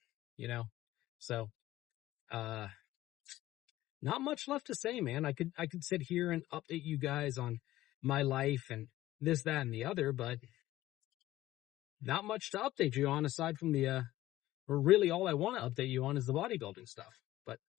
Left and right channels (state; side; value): quieter; right; 15.5 dB